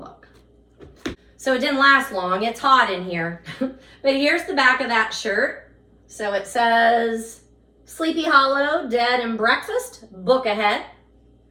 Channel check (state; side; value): identical; both; correlation 1.00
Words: So it didn't last long. It's hot in here. But here's the back of that shirt. So it says, Sleepy Hollow, Dead and Breakfast, book ahead.